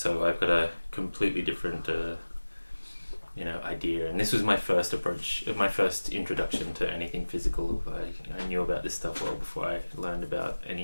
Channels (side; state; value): both; inverted; correlation -1.00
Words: I've got a completely different idea, and this was my first approach, my first introduction to anything physical. I knew about this stuff well before I learned about